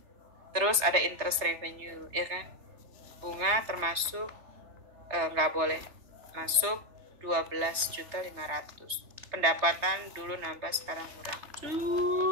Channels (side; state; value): left; late; 3.4 ms